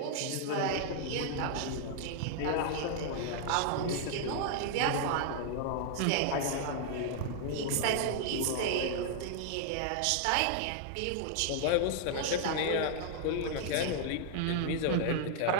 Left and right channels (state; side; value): different; both; correlation -0.01